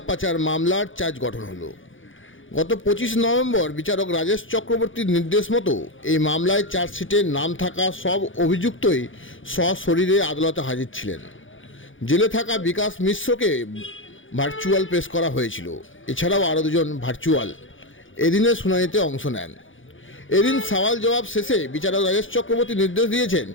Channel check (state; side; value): late; right; 0.57 ms